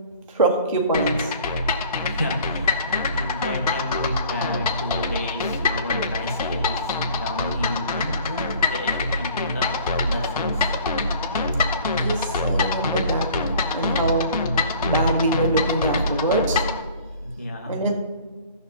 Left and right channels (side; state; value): both; inverted; correlation -0.49